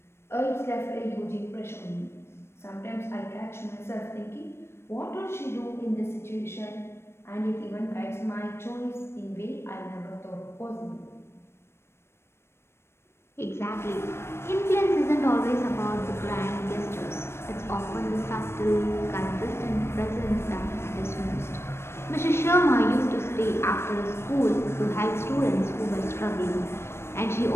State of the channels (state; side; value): late; right; 0.12 ms